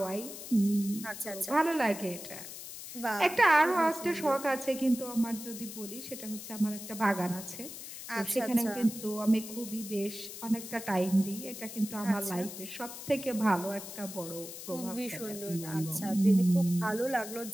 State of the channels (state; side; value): noise; left; hiss, 11 dB below the sound